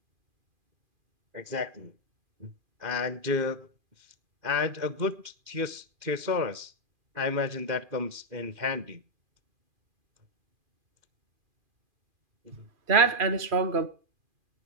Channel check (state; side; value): late; left; 2.4 ms